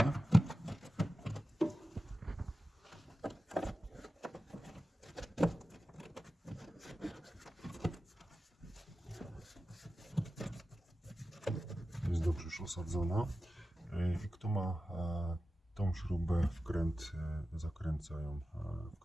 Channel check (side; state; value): both; normal; correlation 0.93